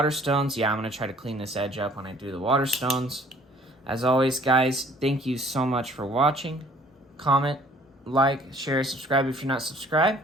yeah, I'm going to try to clean this edge up when I do the waterstones. As always, guys, thank you so much for watching. Comment, like, share, subscribe if you're not subscribed.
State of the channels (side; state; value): both; normal; correlation 0.56